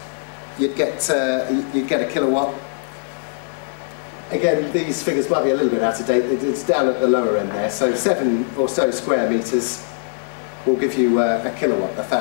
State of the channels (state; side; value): silent; right; digital silence